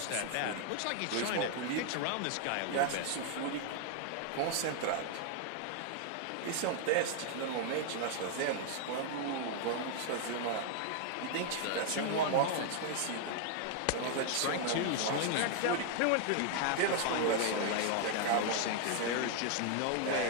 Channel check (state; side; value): different; both; correlation 0.00